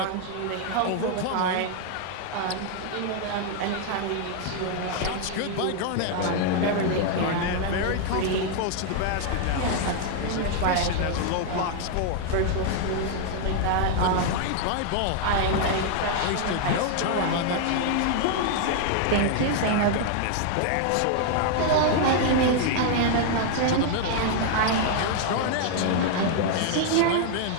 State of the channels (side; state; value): both; different; correlation 0.00